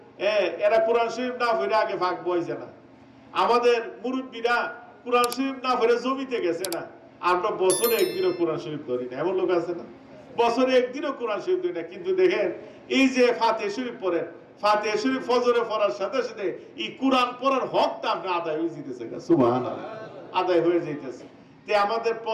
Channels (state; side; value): identical; both; correlation 1.00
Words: এরা কোরআন শরীফ না পড়ে আগে ভাগ বইছে না। আমাদের মুরব্বীরা কোরআন শরীফ না পড়ে জমিতে গেছে না। আমরা বছরে একদিনও কোরআন শরীফ ধরি না, এমন লোক আছে না? বছরে একদিনও কোরআন শরীফ ধরি না। কিন্তু দেখেন, এই যে ফাতিহা শরীফ পড়েন, ফাতিহা শরীফ ফজরে পড়ার সাথে সাথে এই কোরআন পড়ার হকটা আপনি আদায় হয়ে যেতেছে। সুবহানাল্লাহ। আদায় হয়ে যাইতেছে। তে আমাদের